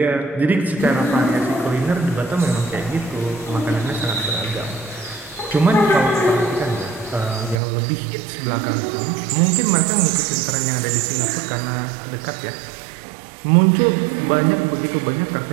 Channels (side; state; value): left; drops out; at 7.6 s